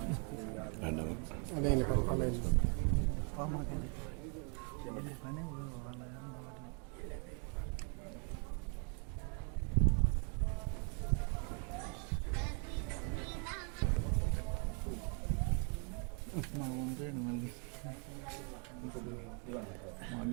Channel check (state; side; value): quieter; left; 39.4 dB